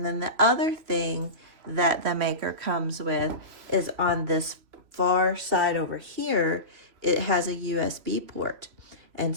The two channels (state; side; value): late; left; 3.0 ms